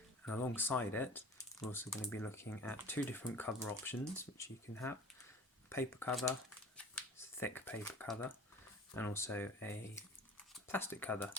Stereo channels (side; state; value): both; normal; correlation 0.42